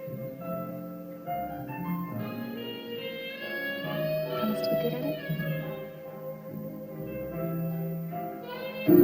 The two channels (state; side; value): identical; both; correlation 1.00